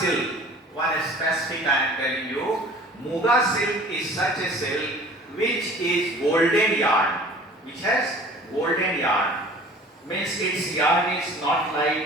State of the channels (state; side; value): normal; both; correlation 0.47